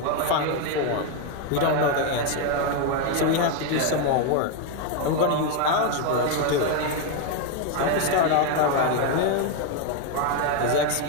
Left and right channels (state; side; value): different; both; correlation 0.01